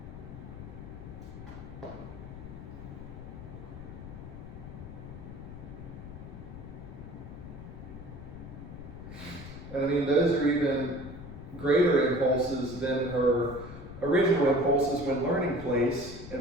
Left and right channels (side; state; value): left; noise; rumble, 11 dB below the sound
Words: And I mean, those are even greater impulses than her original impulses when learning place.